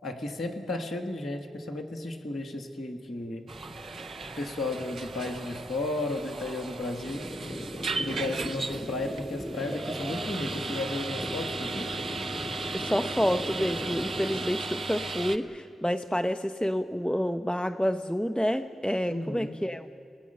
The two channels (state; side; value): normal; both; correlation 0.87